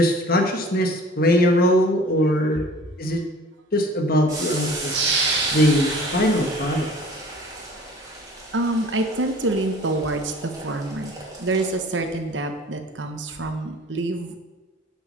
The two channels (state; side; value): normal; both; correlation 0.48